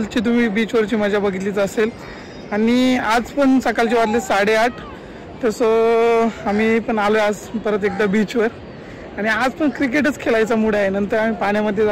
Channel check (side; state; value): both; identical; correlation 1.00